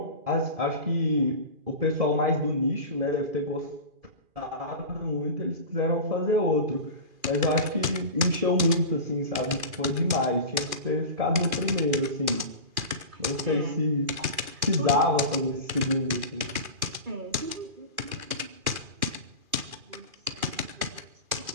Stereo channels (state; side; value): late; left; 2.4 ms